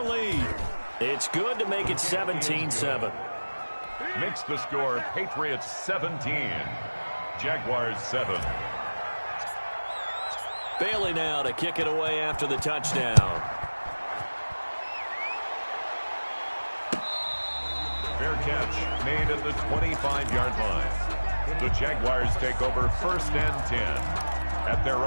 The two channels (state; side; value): inverted; both; correlation -1.00